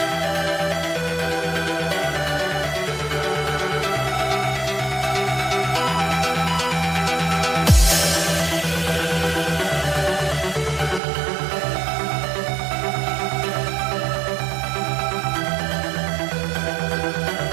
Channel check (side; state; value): left; drops out; at 11.0 s